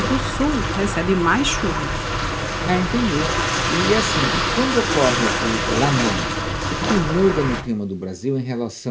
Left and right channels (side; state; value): both; identical; correlation 1.00